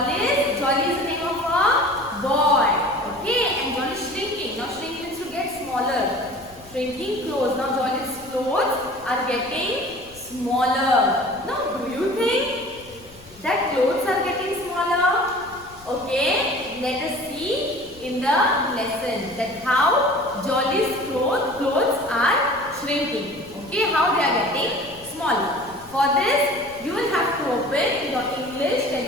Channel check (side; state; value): left; noise; rumble, 24 dB below the sound